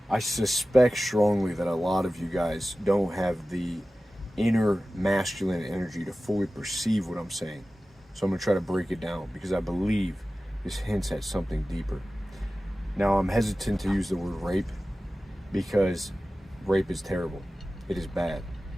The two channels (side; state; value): both; normal; correlation 0.96